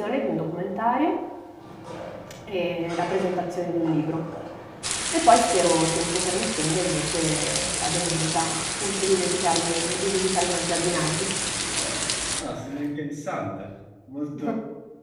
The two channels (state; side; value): identical; both; correlation 1.00